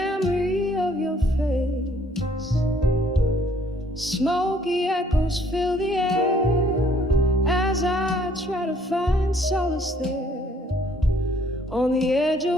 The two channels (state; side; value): normal; both; correlation 0.63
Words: of your face. Smoky echoes fill the air as I try to find solace there, on the edge